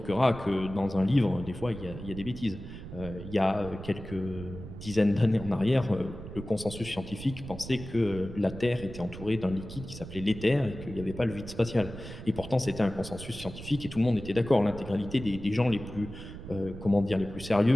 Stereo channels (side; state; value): right; noise; rumble, 12 dB below the sound